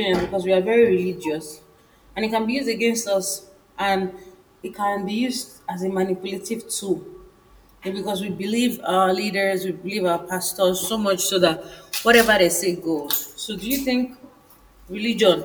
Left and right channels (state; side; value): identical; both; correlation 1.00